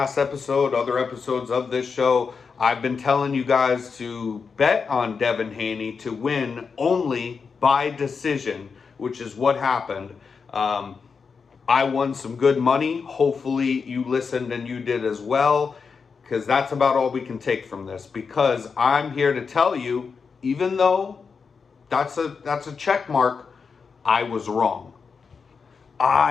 episode, other episodes of this show, I've been telling you guys to bet on Devin Haney to win only by decision, which is what happened. I won some good money. Hopefully you listened and you did as well, because that's about all we can take from this. Because I'm here to tell you, even though that's a check mark, I was wrong.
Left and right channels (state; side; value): quieter; right; 5.4 dB